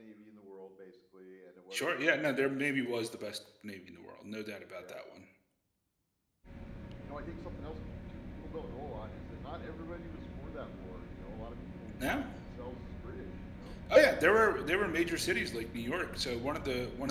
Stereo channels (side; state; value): both; identical; correlation 1.00